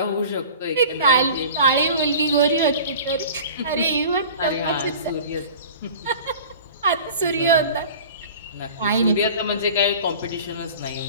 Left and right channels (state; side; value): inverted; both; correlation -0.41